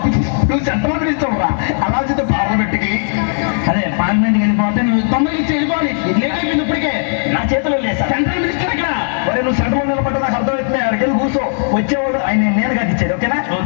నువ్వు చట్టమంత్రి ఇస్తావురా. అలా చెప్తే పార్లమెంట్కి అదే పార్లమెంట్కి వెళ్ళిపోతే నువ్వు 90 ఇచ్చి వెళ్ళిపోవాలి. లేట్ అయిపోయింది ఇప్పటికే. నా చేతిలో లేదు సార్. సెంట్రల్ మినిస్టర్ ఇక్కడ. మరి నువ్వు సెంట్రల్ నిలబడ్డా నాకు అర్థమవుతుంది. అక్కడికి వెళ్ళి కూర్చో. వచ్చేవాడు ఆయన నేను కాదు ఇచ్చేది. ఓకేనా?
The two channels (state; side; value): silent; right; digital silence